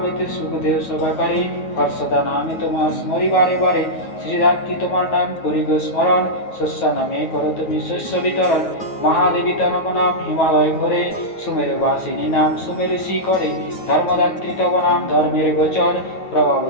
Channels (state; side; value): late; right; 9.3 ms